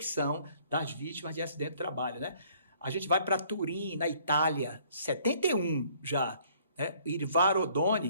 das vítimas de acidente de trabalho, né? A gente vai para Turim, na Itália, 71 já. Né? Irvaro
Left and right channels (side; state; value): both; inverted; correlation -0.59